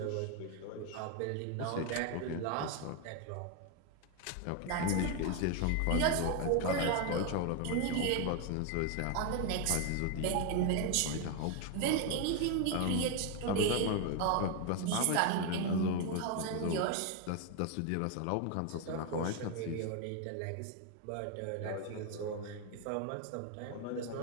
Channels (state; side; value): different; both; correlation 0.01